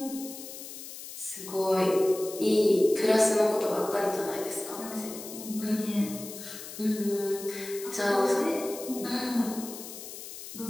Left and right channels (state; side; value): noise; left; hiss, 12 dB below the sound